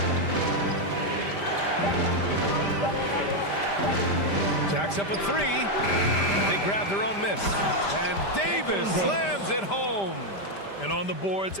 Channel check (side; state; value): right; late; 5.0 ms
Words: Jacks up a 3. They grab their own miss. And Davis slams it home. And on the boards,